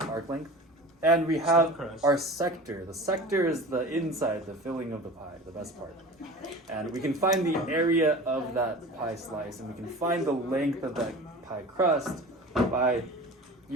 arc length. And we have crust. our sector. The sector is the inside, the filling of the pie, the best part. And we can find the area of that pie slice, and we can find the length of that pie crust by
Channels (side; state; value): both; normal; correlation 0.37